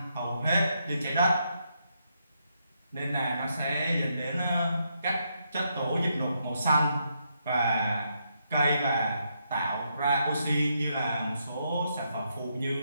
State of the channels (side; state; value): both; inverted; correlation -0.79